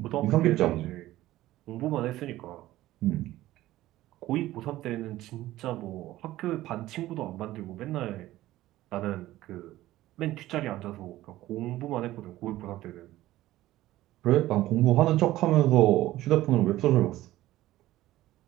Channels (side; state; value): left; quieter; 15.7 dB